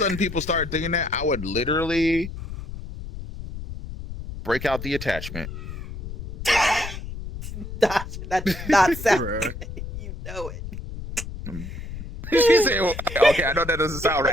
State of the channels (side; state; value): left; noise; rumble, 9 dB below the sound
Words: people started thinking that, I would literally break out the attachment. That did not sound Bruh. good. You know it. She said, well, okay, I know that doesn't sound